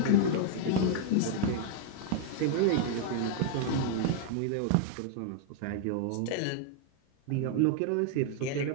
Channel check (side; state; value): both; different; correlation 0.00